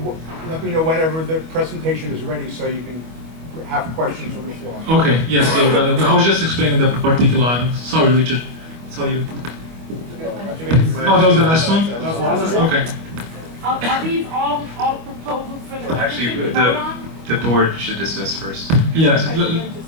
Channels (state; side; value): late; left; 25 ms